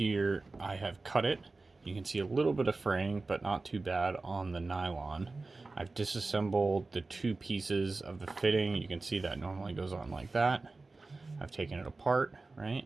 I have cut it. You can see a little bit of fraying, but not too bad on the nylon. I've disassembled the two pieces of the fitting. You can see that normally goes on like that. I've taken it apart, right?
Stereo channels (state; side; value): quieter; left; 3.5 dB